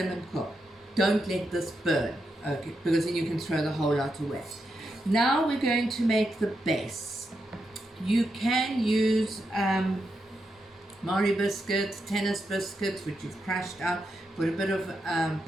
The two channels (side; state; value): both; normal; correlation 0.85